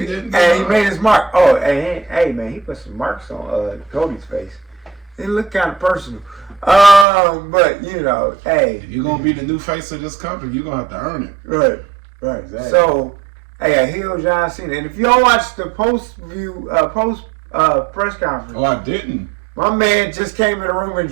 mark. Oh, hey man, he put some marks on Cody's face. It looked kind of personal. But hey, if you're gonna be the new face of this company, you're gonna have to earn it. Right. Exactly. So, hey, I heel John Cena, and if y'all watch the post press conference, I didn't. My man just came in the room and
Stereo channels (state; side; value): drops out; left; at 7.1 s